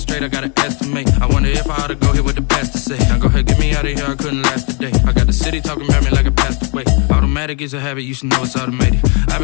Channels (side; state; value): right; quieter; 35.3 dB